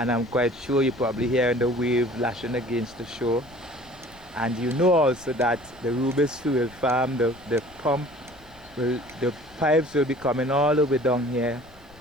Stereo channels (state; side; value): noise; left; rumble, 26 dB below the sound